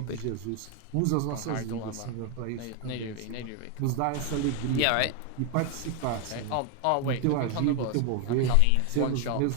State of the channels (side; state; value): both; different; correlation 0.01